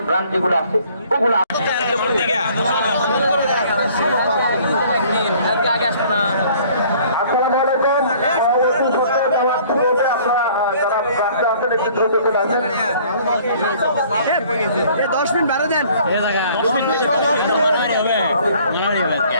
ব্র্যান্ড যেগুলো আসছে, ওগুলো দশ মিনিট বাড়ে দেন।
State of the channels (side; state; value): both; inverted; correlation -0.55